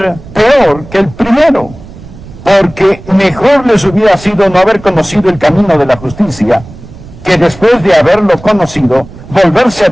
peor que el primero. Porque mejor les hubiera sido no haber conocido el camino de la justicia, que después de haberlo conocido, volverse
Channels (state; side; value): noise; right; rumble, 18 dB below the sound